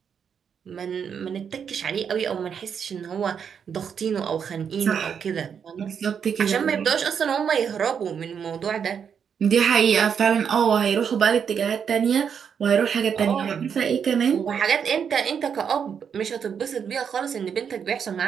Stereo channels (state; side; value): quieter; left; 7.3 dB